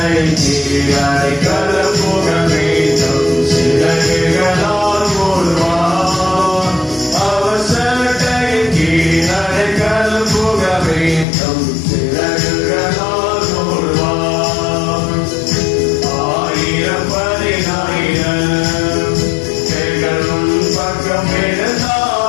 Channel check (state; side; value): drops out; right; at 11.2 s